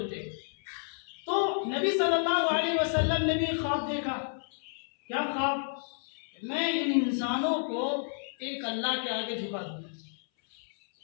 ہیں۔ تو نبی صلی اللہ علیہ وسلم نے بھی ایک خواب دیکھا۔ کیا خواب؟ میں ان انسانوں کو ایک اللہ کے آگے جھکا دوں گا۔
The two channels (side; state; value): right; silent; 57 dB below the other